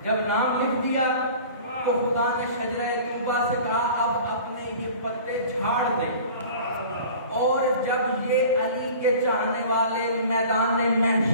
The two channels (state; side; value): inverted; both; correlation -0.43